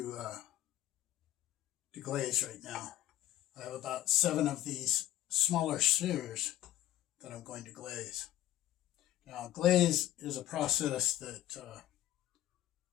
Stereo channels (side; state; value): right; quieter; 13.7 dB